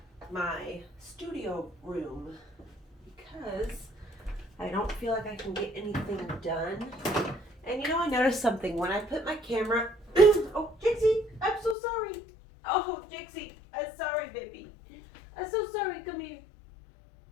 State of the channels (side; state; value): right; drops out; at 11.8 s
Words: my studio room because I don't feel like I can get anything done. And I noticed something when I put my camera. Oh, Jixie, I'm so sorry. Oh, Jixie, I'm sorry, baby. I'm so sorry. Come here.